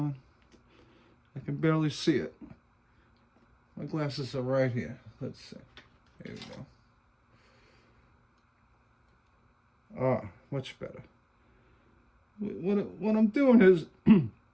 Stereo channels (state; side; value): identical; both; correlation 1.00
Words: I can barely see it. My glasses are right here. Let's see. There we go. Ah, much better. What I'm doing is,